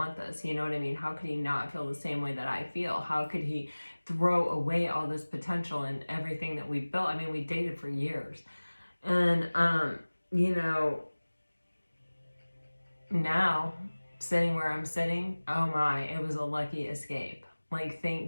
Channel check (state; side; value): inverted; both; correlation -1.00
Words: this? You know what I mean? How could he not feel the same way that I feel? How could he throw away all this potential and everything that we built? I mean, we dated for years. And you know, now sitting where I'm sitting, oh my, it was a lucky escape. Like,